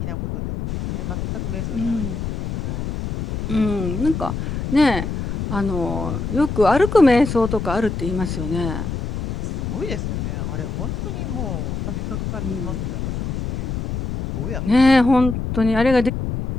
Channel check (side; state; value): left; noise; rumble, 4 dB below the sound